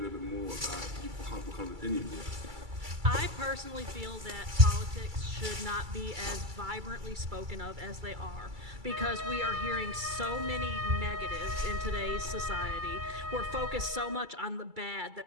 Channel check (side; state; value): left; late; 2.3 ms